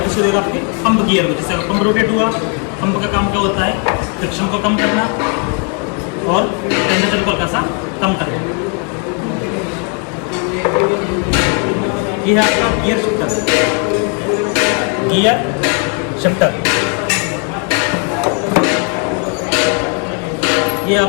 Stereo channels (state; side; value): quieter; right; 38.9 dB